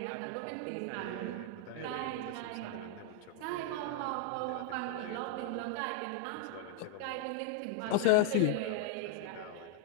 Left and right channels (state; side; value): different; both; correlation 0.00